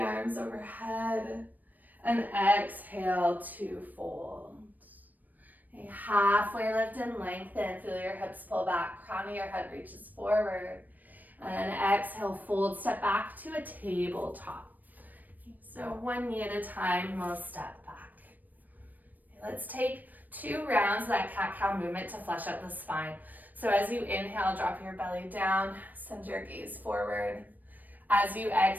overhead, and exhale to fold. Okay, halfway lift and lengthen, feel your hips pull back, crown of your head reaches forward. And then exhale, fold, step back to a tabletop. So one knee at a time, we'll step back. Okay, let's take 2 rounds of that cat-cow movement to flesh out the spine. So as you inhale, drop your belly down, send your gaze forward. As you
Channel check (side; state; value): left; late; 0.085 ms